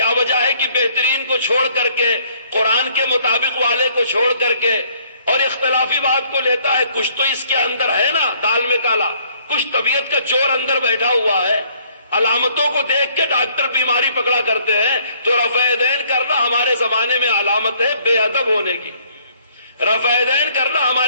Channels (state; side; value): inverted; both; correlation -0.63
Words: وجہ ہے کہ بہترین کو چھوڑ کر کے، قرآن کے مطابق والے کو چھوڑ کر کے اور اختلافی بات کو لیتا ہے؟ کچھ تو اس کے اندر ہے نا، دال میں کالا، کچھ طبیعت کا چور اندر بیٹھا ہوا ہے. علامتوں کو دیکھ کے ڈاکٹر بیماری پکڑا کرتے ہیں. تو رفع یدین کرنا ہمارے زمانے میں علامت ہے بے ادب ہونے کی. رفع یدین کرنا